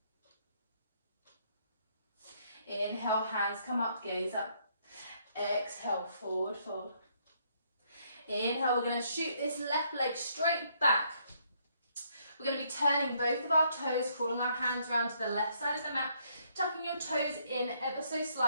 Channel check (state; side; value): inverted; both; correlation -0.70